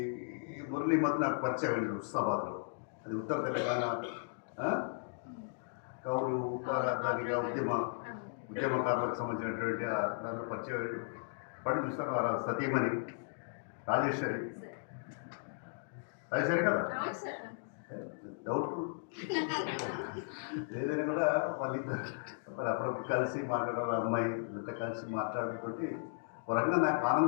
మురళీ మధ్య నాకు పరిచయం అండి హుస్నాబాద్లో. అది ఉత్తర తెలంగాణ కౌలు దానిగా ఉద్యమకారులకు సంబంధించినటువంటి దాంట్లో పరిచయం పడి చూస్తాను. వారు సతీమణి రాజేశ్వరి కదా, డౌట్ఫుల్ ఏదైనా కూడా వాళ్ళిద్దరు అప్పుడప్పుడు కలిసి మాట్లాడారు. అమ్మాయి ఇంత కలిసి మాట్లాడుతోటి వరంగా నాకు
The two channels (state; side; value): silent; right; digital silence